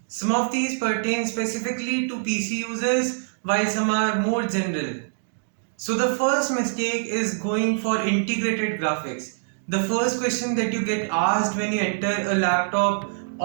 Some of these pertain specifically to PC users while some are more general. So the first mistake is going for integrated graphics. The first question that you get asked when you enter a laptop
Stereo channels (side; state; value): left; silent; digital silence